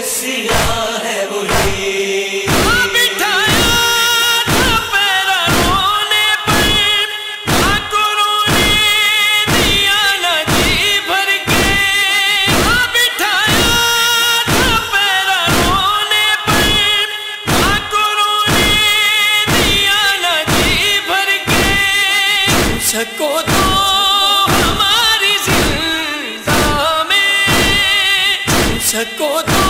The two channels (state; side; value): identical; both; correlation 1.00